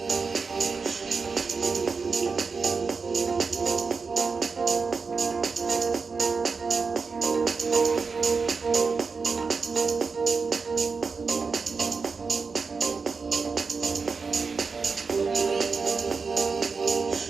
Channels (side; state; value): left; quieter; 4.8 dB